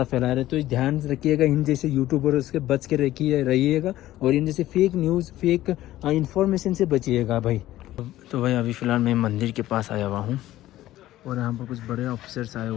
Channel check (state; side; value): quieter; right; 14.8 dB